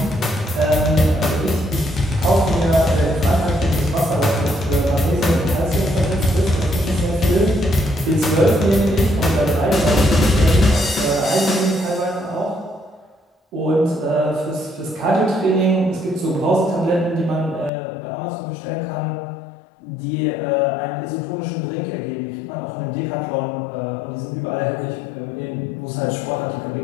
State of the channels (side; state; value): right; drops out; at 17.7 s